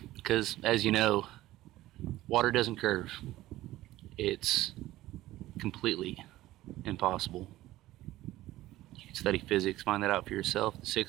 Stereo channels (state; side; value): quieter; left; 16.1 dB